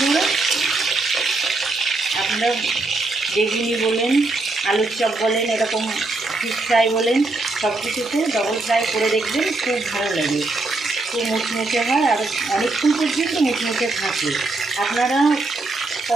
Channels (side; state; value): left; quieter; 3.2 dB